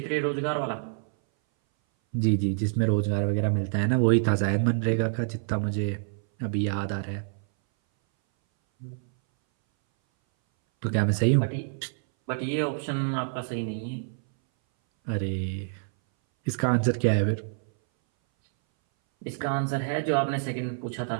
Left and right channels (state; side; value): silent; left; 59 dB below the other